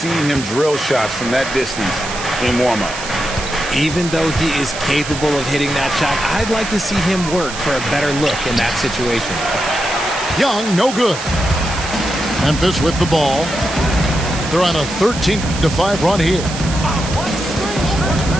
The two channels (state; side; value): noise; right; hiss, 9 dB below the sound